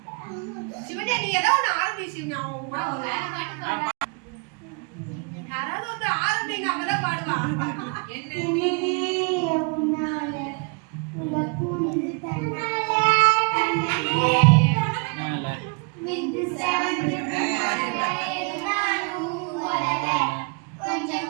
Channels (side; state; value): left; quieter; 34.7 dB